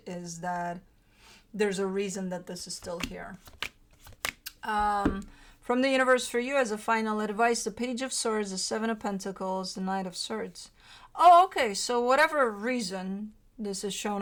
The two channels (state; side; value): identical; both; correlation 1.00